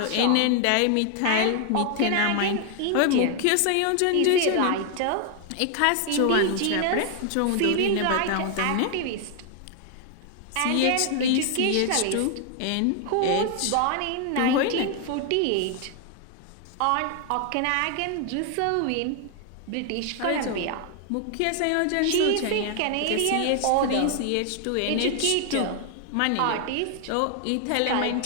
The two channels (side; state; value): both; different; correlation 0.00